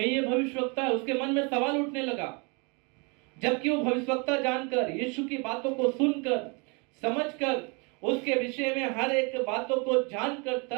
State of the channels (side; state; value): left; quieter; 31.7 dB